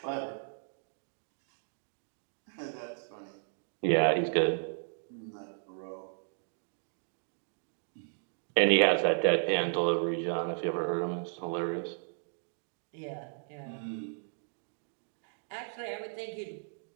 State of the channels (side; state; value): left; silent; digital silence